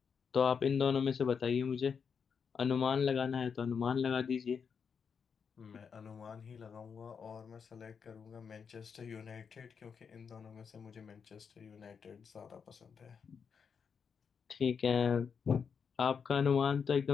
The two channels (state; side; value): quieter; right; 6.4 dB